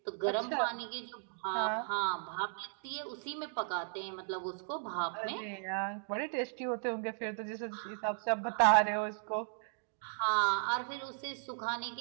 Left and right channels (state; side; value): silent; left; digital silence